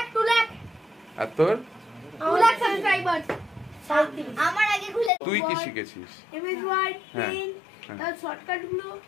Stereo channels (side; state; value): right; drops out; at 5.1 s